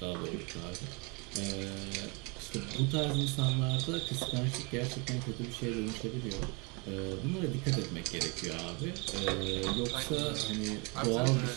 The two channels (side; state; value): left; quieter; 30.7 dB